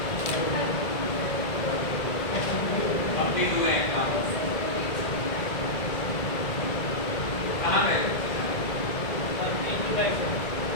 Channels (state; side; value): late; right; 1.9 ms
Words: कंप्लीट हुए एग्जाम। कहाँ गए?